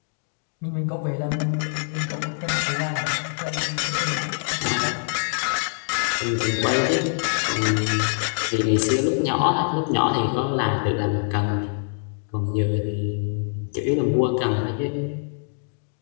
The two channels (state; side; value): silent; right; digital silence